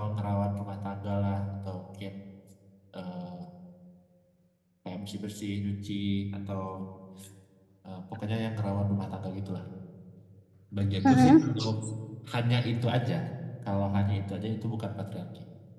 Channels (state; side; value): identical; both; correlation 1.00